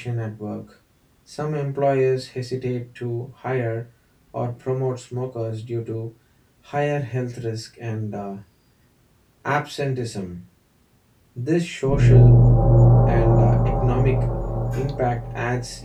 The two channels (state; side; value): identical; both; correlation 1.00